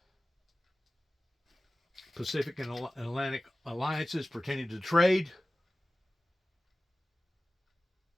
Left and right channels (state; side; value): normal; both; correlation 0.96